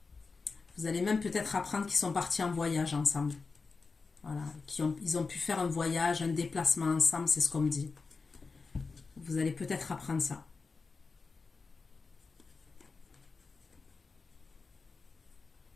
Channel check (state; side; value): quieter; right; 4.4 dB